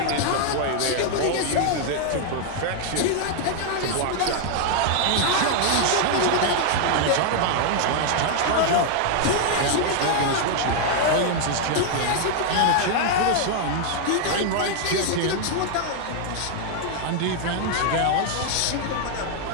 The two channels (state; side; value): different; both; correlation 0.00